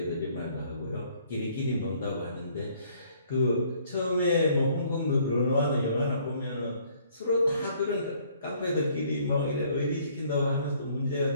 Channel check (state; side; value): inverted; both; correlation -0.62